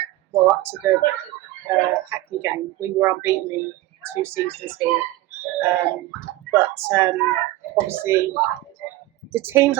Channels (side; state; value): left; quieter; 16.9 dB